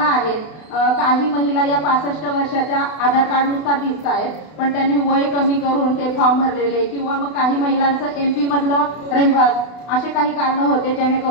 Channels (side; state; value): right; late; 32 ms